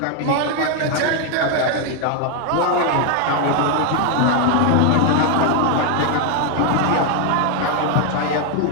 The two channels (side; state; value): both; different; correlation 0.01